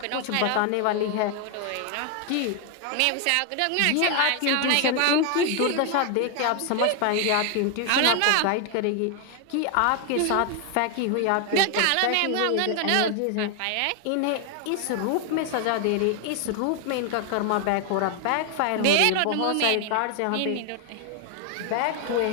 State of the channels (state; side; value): different; both; correlation 0.01